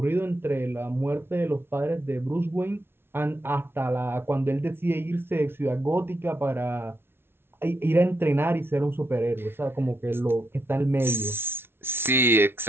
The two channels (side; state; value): left; late; 0.11 ms